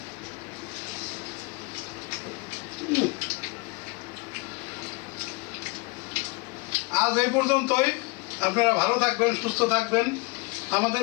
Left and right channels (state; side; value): quieter; right; 27.9 dB